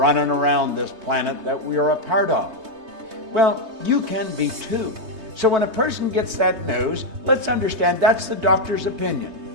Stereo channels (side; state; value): left; late; 3.2 ms